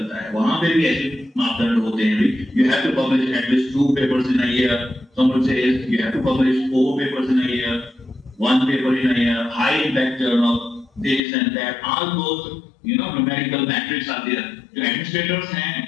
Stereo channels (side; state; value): right; drops out; at 11.2 s